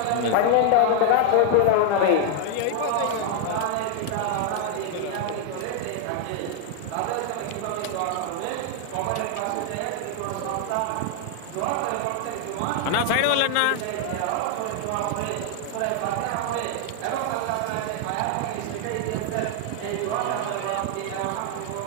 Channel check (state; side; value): different; both; correlation 0.00